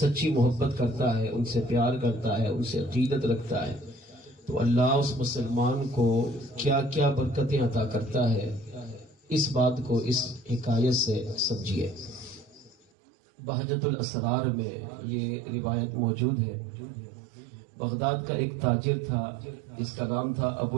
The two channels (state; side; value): drops out; left; at 12.8 s